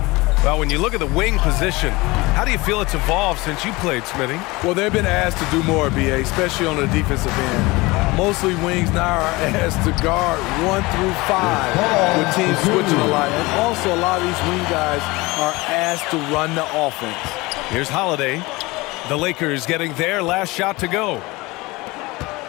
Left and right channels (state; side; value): quieter; right; 22.5 dB